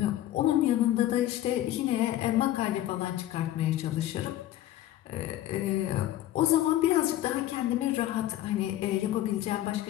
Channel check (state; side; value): quieter; right; 13.7 dB